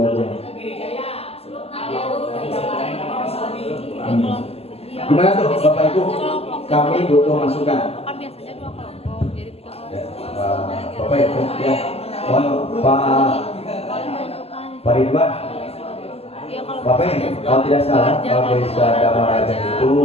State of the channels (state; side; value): late; right; 0.29 ms